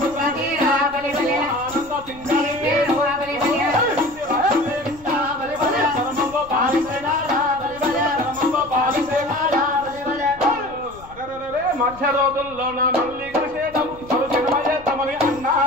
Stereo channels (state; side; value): noise; left; rumble, 21 dB below the sound